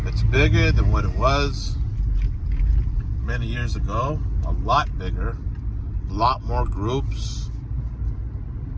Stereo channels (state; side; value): identical; both; correlation 1.00